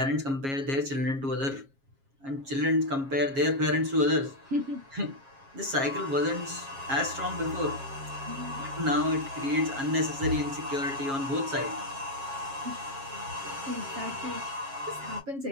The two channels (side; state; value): left; late; 7.3 ms